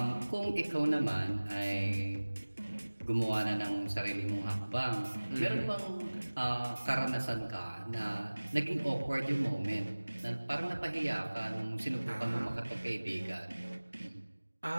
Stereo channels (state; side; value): inverted; both; correlation -1.00